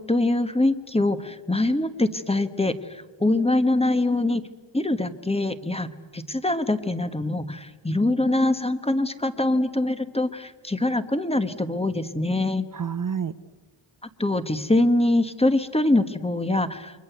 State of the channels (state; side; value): normal; both; correlation 0.82